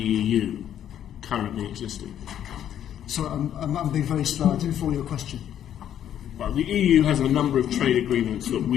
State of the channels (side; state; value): right; quieter; 10.4 dB